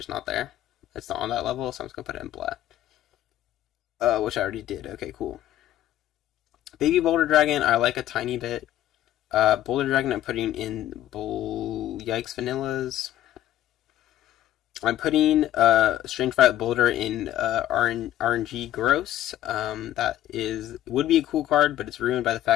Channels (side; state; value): right; quieter; 12.7 dB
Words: not there. It's not on that level, so I'm just going to put it in black. Which I already did. Okay, cool. Baby Boulder Dragon, I like a tiny bit. Boulder Dragon, I'm putting in Yikes Vanillas. I'm putting Strange Violet Boulder in RNG Gross. That would be a cool card, but it's ruined by the